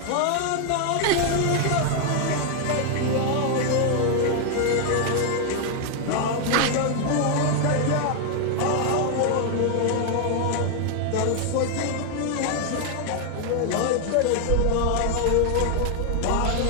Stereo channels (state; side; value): different; both; correlation 0.00